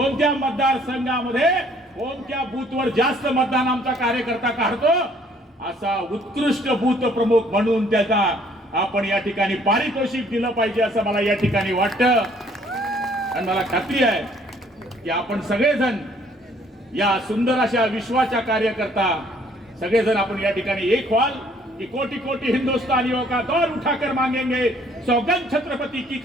मतदारसंघामध्ये कोणत्या बूथवर जास्त मतदान आमचा कार्यकर्ता काढतो, असा उत्कृष्ट बूथ प्रमुख म्हणून त्याचा आपण या ठिकाणी पारितोषिक दिलं पाहिजे, असं मला या ठिकाणी वाटतं. आणि मला खात्री आहे की आपण सगळेजण या सुंदर अशा विश्वाच्या कार्यकर्ता सगळेजण आपण या ठिकाणी एक व्हाल कि कोटि कोटि हिंदुस्तानियों का दौर उठाकर मांगेंगे, सौगंध छत्रपति की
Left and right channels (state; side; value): normal; both; correlation 0.61